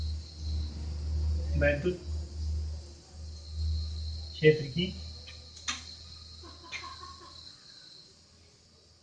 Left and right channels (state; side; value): identical; both; correlation 1.00